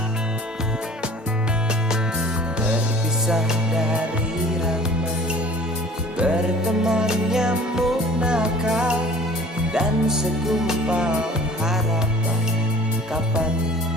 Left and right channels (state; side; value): normal; both; correlation 0.48